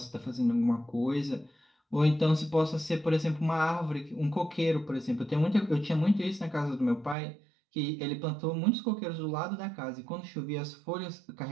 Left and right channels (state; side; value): drops out; left; at 7.2 s